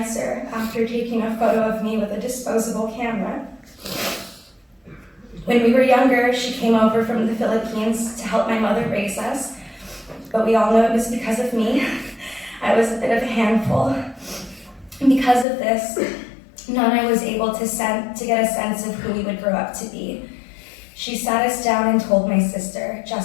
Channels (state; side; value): drops out; right; at 15.5 s